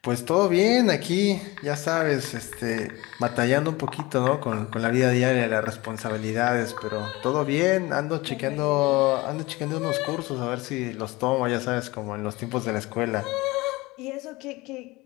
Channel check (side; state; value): right; quieter; 21.7 dB